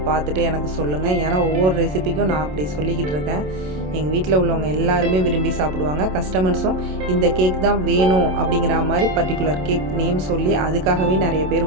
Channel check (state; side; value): late; left; 27 ms